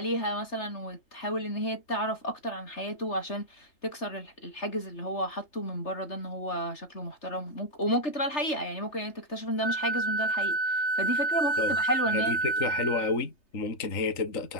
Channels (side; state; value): right; late; 3.3 ms